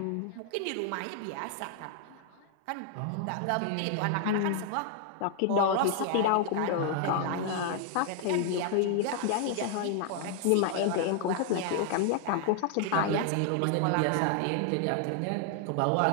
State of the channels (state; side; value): different; both; correlation 0.00